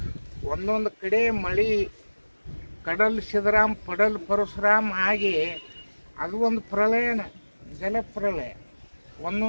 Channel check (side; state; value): both; inverted; correlation -1.00